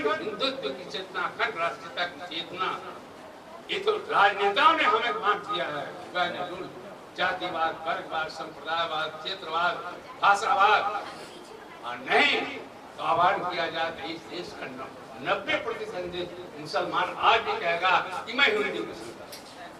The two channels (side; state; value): both; identical; correlation 1.00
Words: हिंदुत्व की चेतना, अखंड राष्ट्रीयता की चेतना। ये तो राजनेताओं ने हमें बांट दिया है, जातिवाद, वर्गवाद, संप्रदायवाद, क्षेत्रवाद, भाषावाद, और नहीं तो आह्वान किया जाता है इस देश का 90% मुसलमान आज भी कहेगा कि मैं हिंदू मुस्लिम।